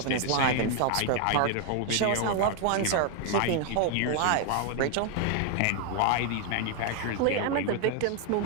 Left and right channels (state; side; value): different; both; correlation 0.00